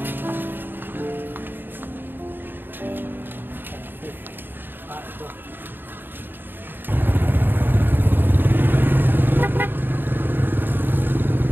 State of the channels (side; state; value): left; late; 0.095 ms